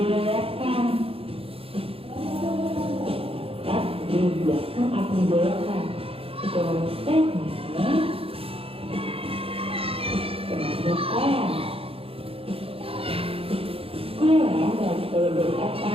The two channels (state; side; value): late; left; 0.27 ms